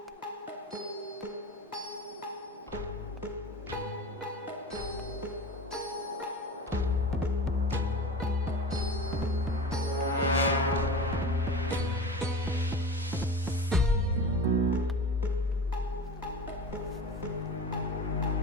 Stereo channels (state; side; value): normal; both; correlation 0.33